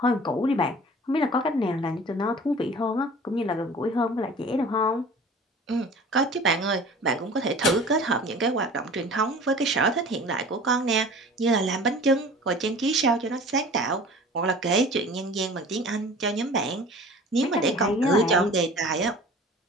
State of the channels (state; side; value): normal; both; correlation 0.43